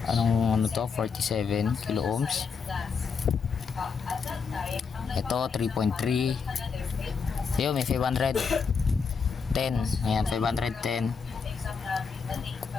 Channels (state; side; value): quieter; right; 5.6 dB